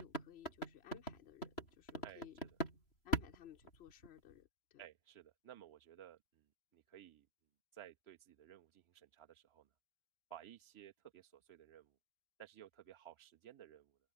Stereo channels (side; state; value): right; late; 3.0 ms